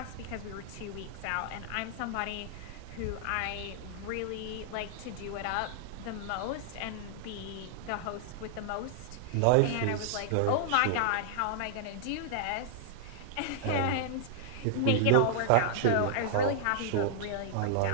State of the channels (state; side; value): different; both; correlation -0.01